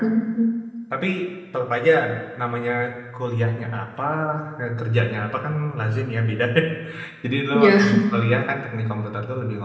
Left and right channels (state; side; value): identical; both; correlation 1.00